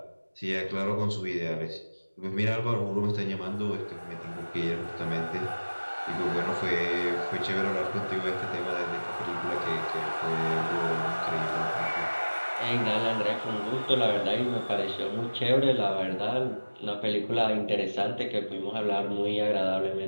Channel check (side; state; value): both; inverted; correlation -1.00